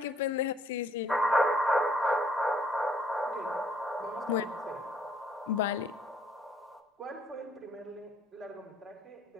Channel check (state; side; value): normal; both; correlation 0.64